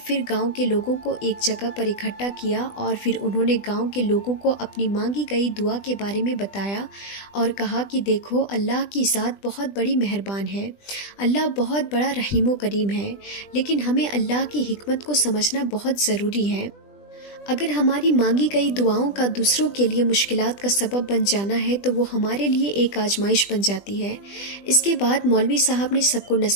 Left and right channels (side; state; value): right; late; 20 ms